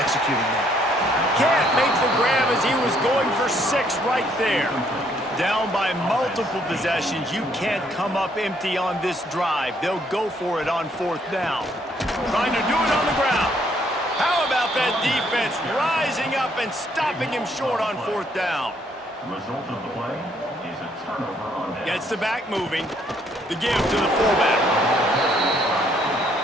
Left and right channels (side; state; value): both; normal; correlation 0.68